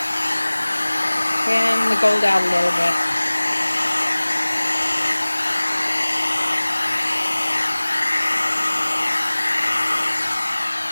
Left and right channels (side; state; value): both; inverted; correlation -1.00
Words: Fan the gold out a little bit.